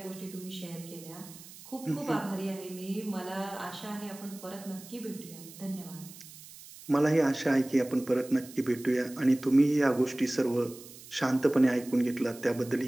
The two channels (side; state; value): right; noise; hiss, 18 dB below the sound